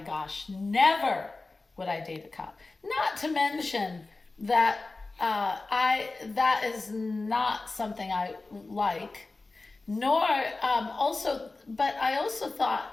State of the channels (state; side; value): quieter; right; 3.4 dB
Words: gosh, never would I date a cop. Not to mention that that is not something I like. Nor but I also